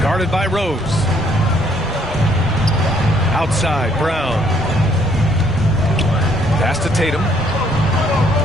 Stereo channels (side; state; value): both; normal; correlation 0.65